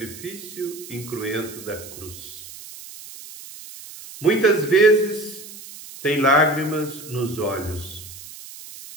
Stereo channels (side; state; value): right; noise; hiss, 15 dB below the sound